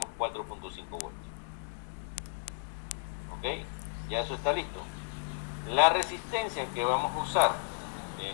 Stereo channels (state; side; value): silent; right; digital silence